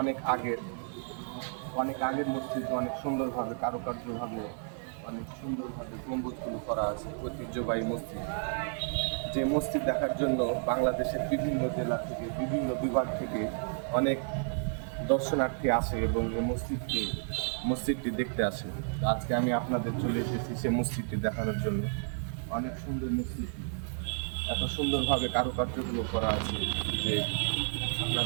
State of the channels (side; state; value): left; silent; 57 dB below the other